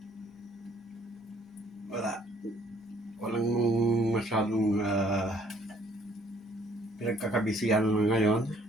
Wala. Walang masyadong pinagkakabisihan ngayon.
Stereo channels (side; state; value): both; normal; correlation 0.62